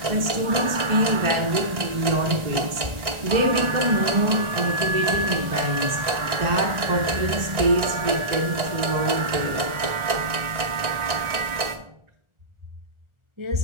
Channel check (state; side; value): late; left; 1.4 ms